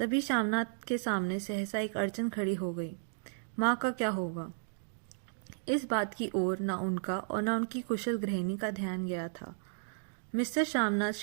श्यामनाथ के सामने सहसा एक अड़चन खड़ी हो गई। माँ का क्या होगा? इस बात की ओर न उनका और न उनकी कुशल गृहिणी का ध्यान गया था। मिस्टर श्यामनाथ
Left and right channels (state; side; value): silent; left; digital silence